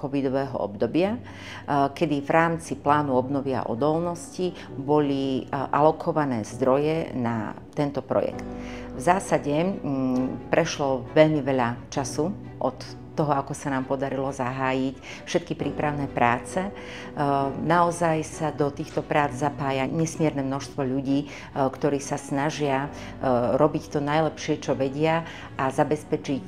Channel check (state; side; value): identical; both; correlation 1.00